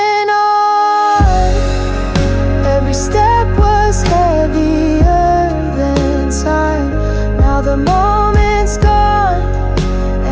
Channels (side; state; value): both; identical; correlation 1.00